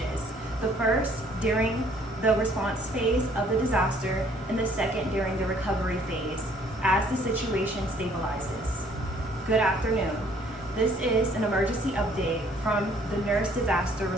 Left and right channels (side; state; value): both; normal; correlation 0.61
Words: the first during the response phase of the disaster and the second during the recovery phase as the situation stabilizes. Good afternoon. This is an emergency update from the Nurse Disaster